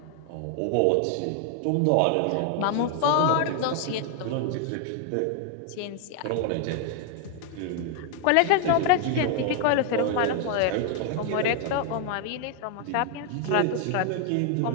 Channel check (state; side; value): different; both; correlation 0.00